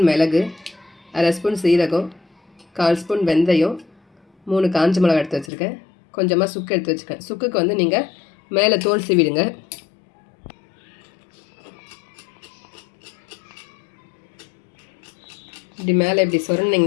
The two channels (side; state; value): right; drops out; at 5.5 s